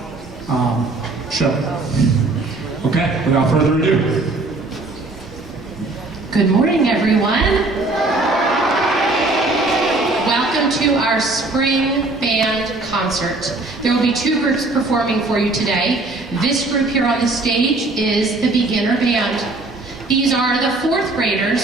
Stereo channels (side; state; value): left; quieter; 3.2 dB